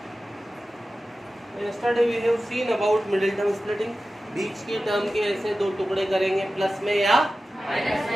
Yesterday we have seen about middle term splitting. बीच के टर्म के ऐसे दो टुकड़े करेंगे प्लस में या माइनस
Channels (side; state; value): both; normal; correlation 0.94